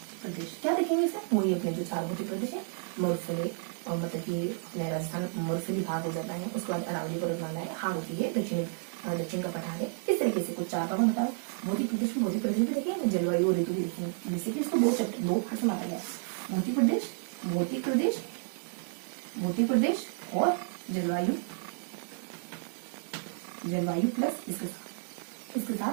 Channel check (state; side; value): silent; left; 57 dB below the other